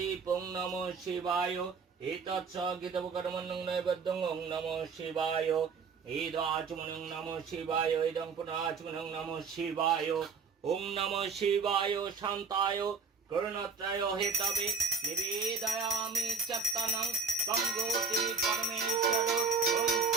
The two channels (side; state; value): left; quieter; 5.2 dB